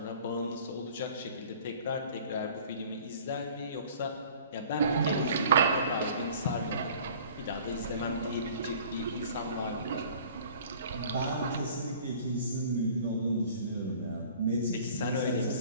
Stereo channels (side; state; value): both; inverted; correlation -0.49